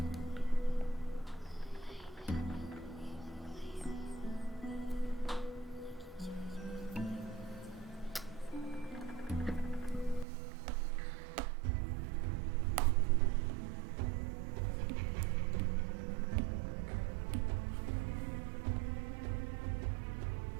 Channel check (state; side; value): drops out; left; at 10.2 s